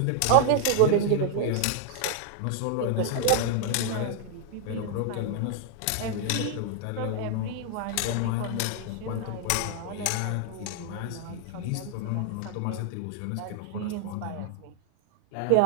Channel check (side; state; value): both; different; correlation 0.00